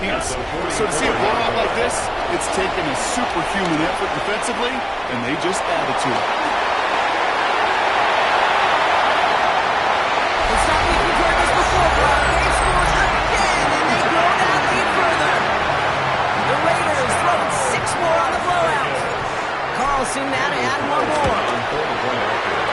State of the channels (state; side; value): identical; both; correlation 1.00